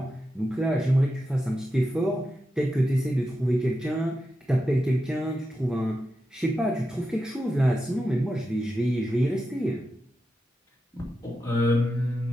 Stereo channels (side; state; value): both; normal; correlation 0.89